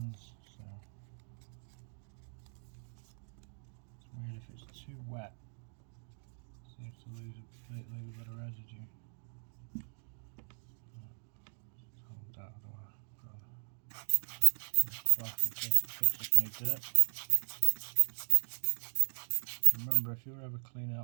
so it's weird if it's too wet. It seems to leave a bit of residue. Just hold that, I don't want to put on a cloth in case it picks up any dirt. Remember, if you're ever cleaning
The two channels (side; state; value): left; silent; 53 dB below the other